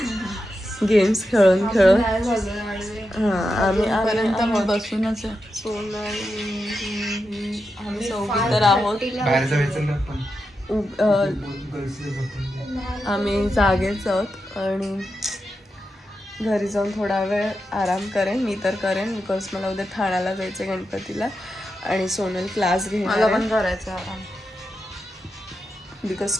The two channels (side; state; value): both; normal; correlation 0.88